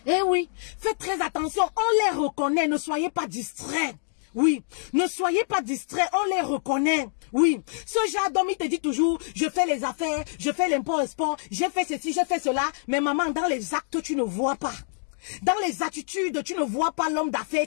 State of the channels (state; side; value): silent; right; digital silence